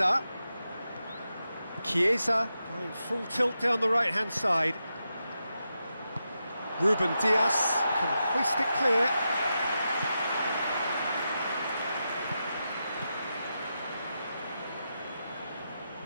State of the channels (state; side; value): inverted; both; correlation -0.88